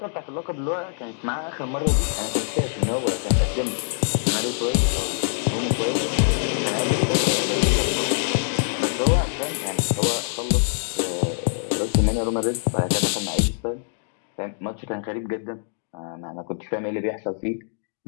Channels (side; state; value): right; silent; digital silence